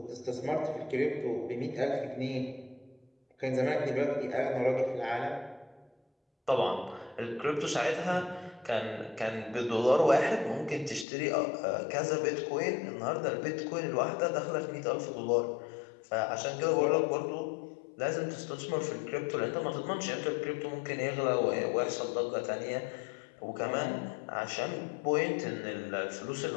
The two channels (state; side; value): drops out; right; at 11.1 s